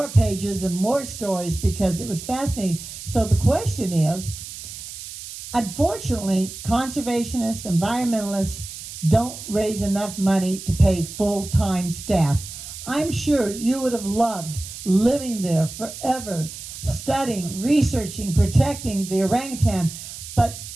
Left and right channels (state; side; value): noise; right; hiss, 11 dB below the sound